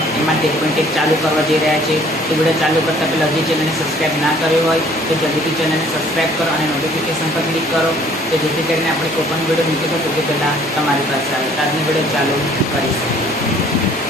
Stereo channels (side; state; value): both; normal; correlation 0.57